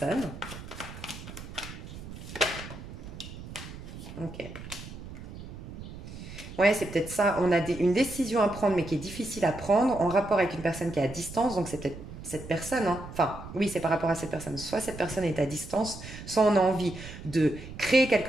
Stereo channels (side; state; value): right; noise; rumble, 12 dB below the sound